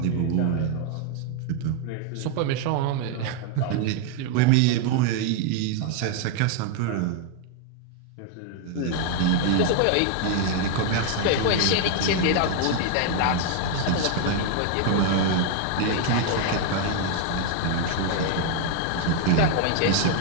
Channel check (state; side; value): different; both; correlation 0.00